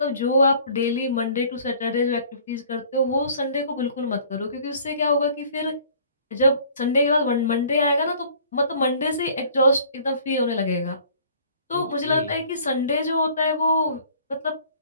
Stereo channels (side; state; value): both; inverted; correlation -0.53